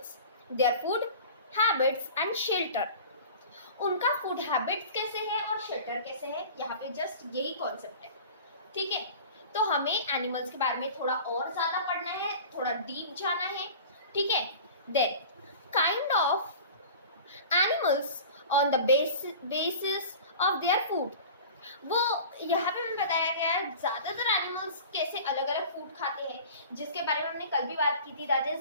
their food habits and shelter. उनका फूड हैबिट्स कैसे है और शेल्टर कैसे है, यहाँ पे जस्ट यही कॉन्सेप्ट है। ठीक है, तो हमें एनिमल्स के बारे में थोड़ा और ज्यादा पढ़ना है, थोड़ा डीप जाना है। ठीक है, then kind of animals on the basis of their food. वो यहाँ पे हमें बताया गया है ज्यादातर एनिमल्स कैसे अलग अलग फूड खाते हैं, जिसके बारे में हमने कल भी बात की थी। दैट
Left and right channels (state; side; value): inverted; both; correlation -0.39